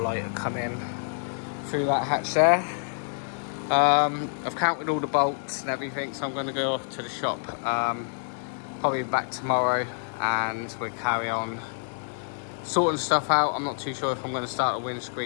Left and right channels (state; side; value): silent; right; digital silence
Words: will come in through that hatch there. I've counted all the bolts and everything, so I'm going to go off to the shop. Probably back tomorrow, and we'll carry on sorting stuff out. I'm not too sure if I'm going to start a